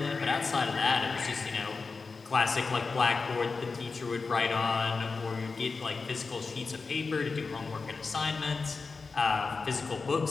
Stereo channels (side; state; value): right; quieter; 4.4 dB